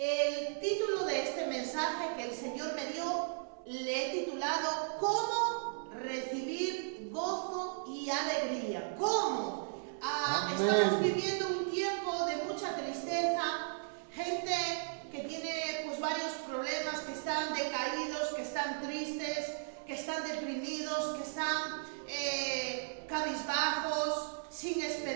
título de este mensaje que el Señor me dio, le he titulado ¿Cómo recibir gozo y alegría? ¿Cómo? Estamos viviendo un tiempo de mucha tristeza, gente que tiene pues varios problemas, que están decaídos, que están tristes, que están deprimidos, que están cabizbajos, sin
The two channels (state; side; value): silent; left; 54 dB below the other